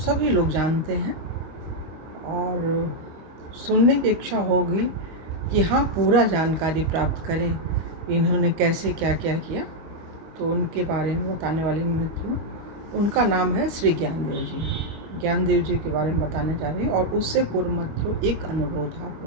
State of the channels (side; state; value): left; late; 25 ms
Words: लोग जानते हैं और सुनने की इच्छा होगी कि हाँ, पूरा जानकारी प्राप्त करें इन्होंने कैसे क्या क्या किया। तो उनके बारे में बताने वाली मित्रों, उनका नाम है श्री ज्ञानदेव जी। ज्ञानदेव जी के बारे में बताने जा रहे हैं। और उससे पूर्व मित्रों, एक अनुरोध है आप